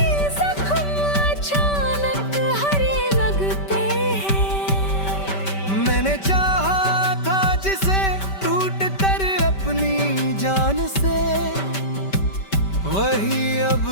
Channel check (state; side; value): late; right; 5.2 ms